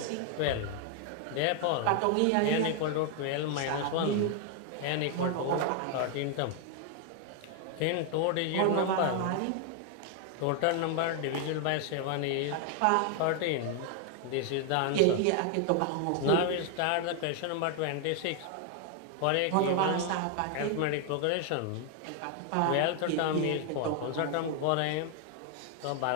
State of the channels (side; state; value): both; different; correlation 0.00